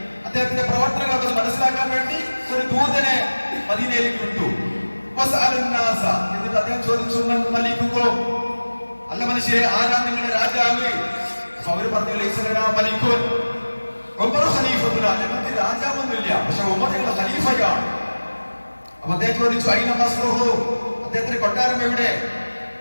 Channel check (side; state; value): both; inverted; correlation -1.00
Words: അദ്ദേഹത്തിന്റെ പ്രവർത്തനങ്ങളൊക്കെ മനസ്സിലാക്കാൻ വേണ്ടി ഒരു ദൂതനെ മദീനയിലേക്ക് വിട്ടു. എന്നിട്ട് അദ്ദേഹം ചോദിച്ചു, മലിക്കുമോ, അല്ല മനുഷ്യരെ, ആരാ നിങ്ങളുടെ രാജാവ്? അവര് പറഞ്ഞു, മലിക്കുൻ ഉമർ ഖലീഫത്തുന, ഞങ്ങൾക്ക് രാജാവൊന്നുമില്ല, പക്ഷെ ഉമർ ഞങ്ങളുടെ ഖലീഫയാണ്. അപ്പൊ അദ്ദേഹം ചോദിച്ചു, അയിന ഖസ്റുഹു, അദ്ദേഹത്തിന്റെ കൊട്ടാരം എവിടെ?